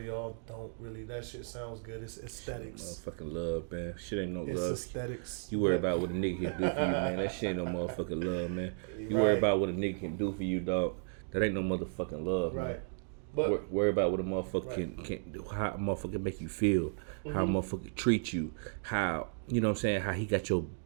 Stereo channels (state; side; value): silent; left; digital silence